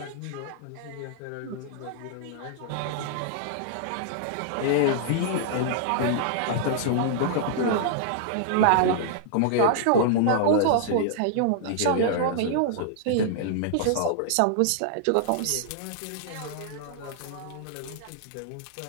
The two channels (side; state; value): both; different; correlation -0.01